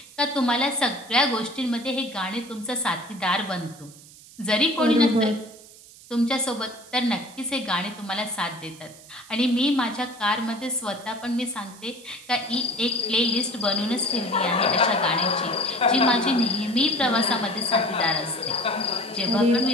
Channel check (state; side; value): noise; right; hiss, 21 dB below the sound